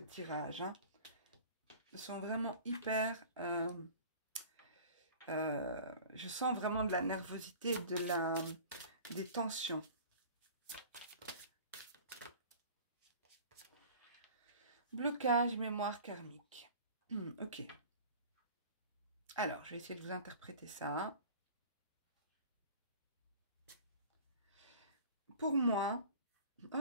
Hein. Elles sont vraiment hyper... je sens vraiment de la nervosité, des tensions. Blocage, mémoire karmique. Ok. Alors, je vais essayer de vous interpréter ça. Pour moi...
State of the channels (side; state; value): both; inverted; correlation -0.42